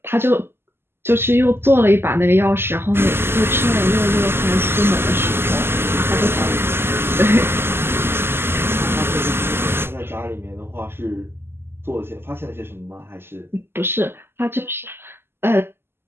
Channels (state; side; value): late; left; 0.12 ms